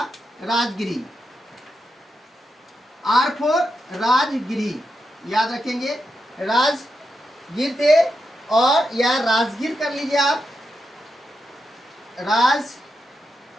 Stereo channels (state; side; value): normal; both; correlation 0.86